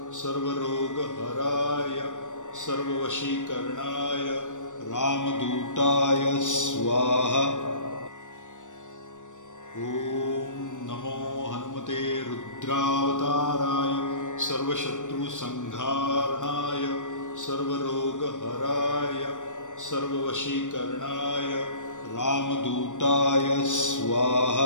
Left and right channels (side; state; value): right; late; 0.86 ms